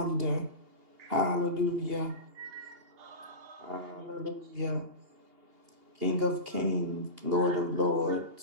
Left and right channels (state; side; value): late; left; 2.8 ms